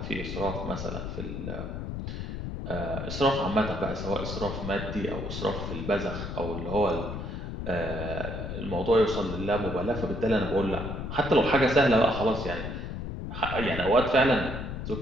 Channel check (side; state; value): left; noise; rumble, 6 dB below the sound